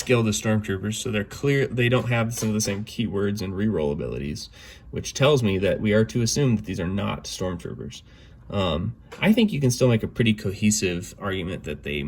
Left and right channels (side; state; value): both; identical; correlation 1.00